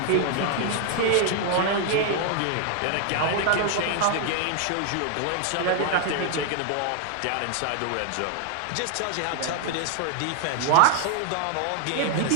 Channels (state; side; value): different; both; correlation 0.00